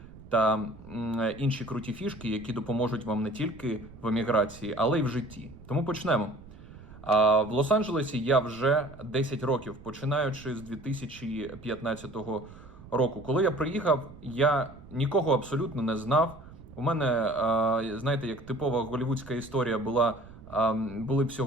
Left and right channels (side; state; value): right; noise; rumble, 18 dB below the sound